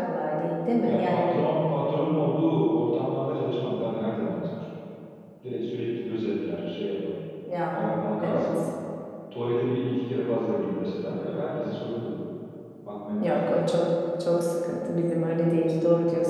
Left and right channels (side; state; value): both; identical; correlation 1.00